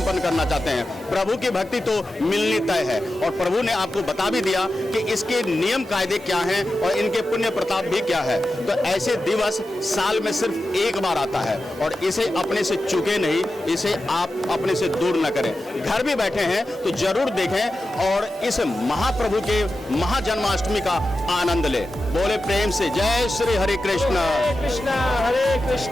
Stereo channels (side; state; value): both; normal; correlation 0.92